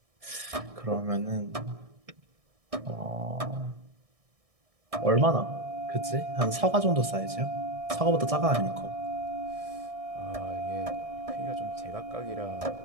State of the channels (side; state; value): left; late; 1.6 ms